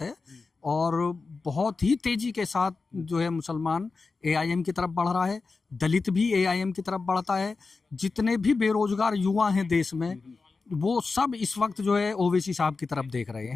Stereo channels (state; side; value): quieter; right; 4.2 dB